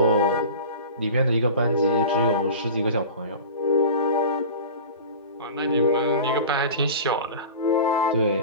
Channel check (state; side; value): inverted; both; correlation -0.34